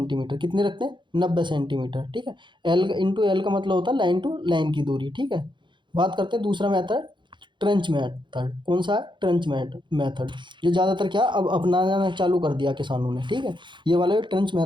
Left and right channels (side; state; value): left; late; 0.23 ms